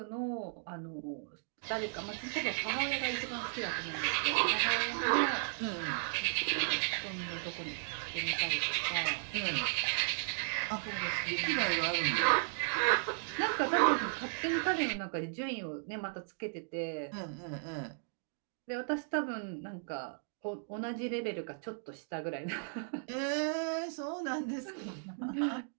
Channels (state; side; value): silent; left; digital silence